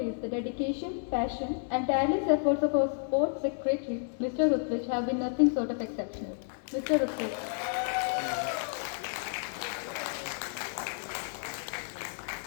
the dedication, passion, and tireless efforts of our sports secretary, Mr. Rutrich, have been nothing short of exceptional. Mr. Rutrich.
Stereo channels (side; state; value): right; silent; digital silence